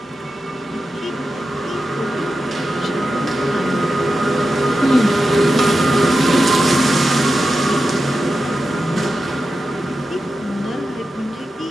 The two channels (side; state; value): both; normal; correlation 0.91